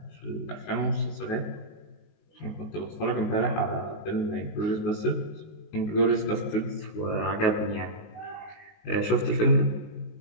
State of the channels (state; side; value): late; right; 19 ms